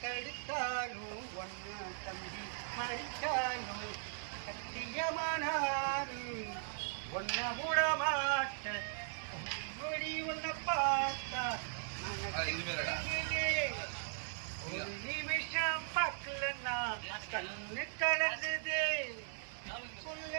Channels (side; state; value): left; silent; digital silence